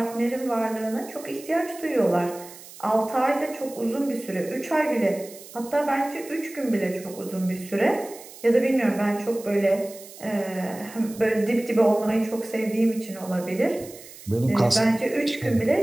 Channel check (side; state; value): right; noise; hiss, 18 dB below the sound